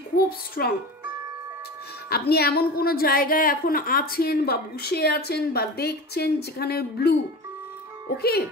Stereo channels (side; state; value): both; normal; correlation 0.31